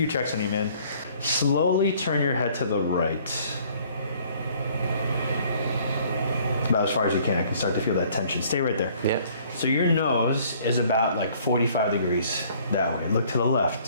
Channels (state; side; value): inverted; both; correlation -0.58